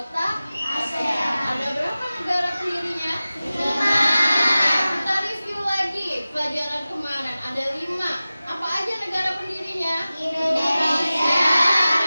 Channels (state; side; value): inverted; both; correlation -0.96